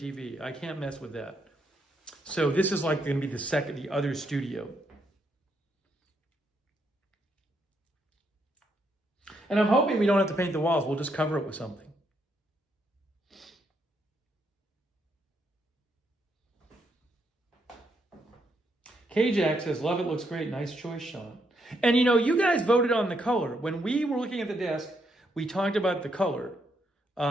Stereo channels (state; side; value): normal; both; correlation 0.77